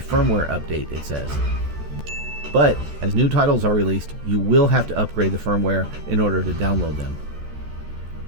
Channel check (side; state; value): left; late; 14 ms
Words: update, it says. But as new titles are released, you will have to upgrade the firmware in order to download them.